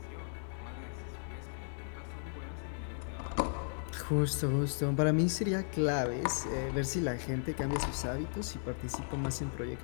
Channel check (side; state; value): right; silent; digital silence